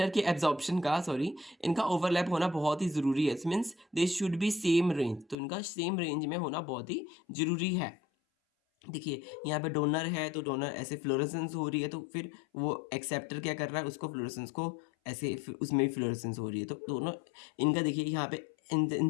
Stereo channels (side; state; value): right; drops out; at 5.4 s